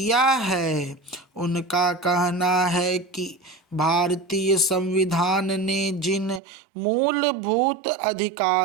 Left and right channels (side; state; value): left; drops out; at 6.4 s